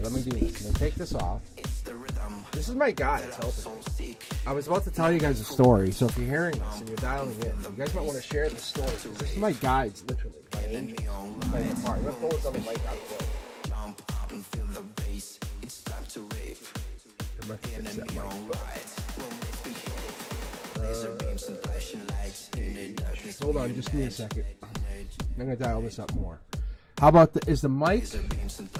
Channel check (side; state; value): both; identical; correlation 1.00